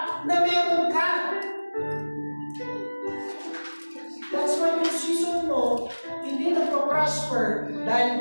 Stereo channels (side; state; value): both; inverted; correlation -1.00